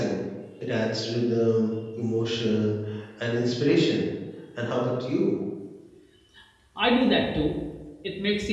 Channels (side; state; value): both; identical; correlation 1.00